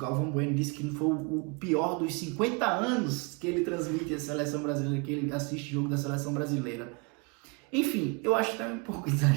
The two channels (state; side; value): quieter; left; 31.1 dB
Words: Bueno disse que foi o pior dos 50 anos que ele transmite a seleção brasileira, que ele assiste jogo da seleção brasileira. Enfim, eu acho que é um pouco